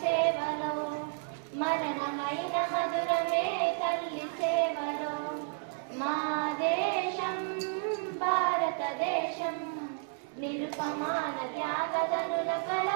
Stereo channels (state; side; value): silent; left; 57 dB below the other